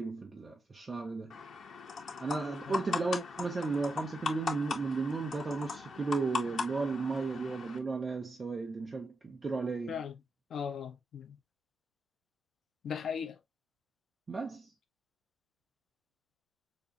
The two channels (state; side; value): normal; both; correlation 0.84